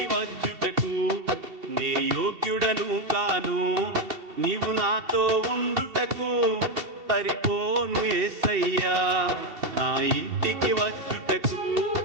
వచ్చుటకు నే యోగ్యుడను కాను, నీవు నాతో ఉండుటకు సరిపోను యేసయ్యా. నా ఇంటికి వచ్చుటకు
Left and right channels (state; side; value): late; left; 2.7 ms